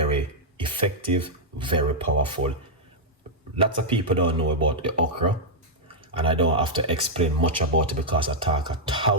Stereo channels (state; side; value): normal; both; correlation -0.06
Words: effective, very powerful. Lots of people don't know about the okra, and I don't have to explain much about it because I talk